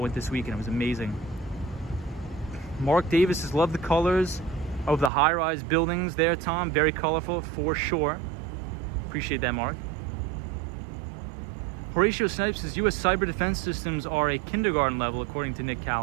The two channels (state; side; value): drops out; left; at 5.1 s